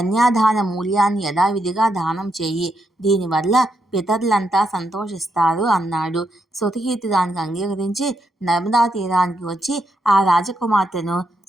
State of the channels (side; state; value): both; normal; correlation 0.80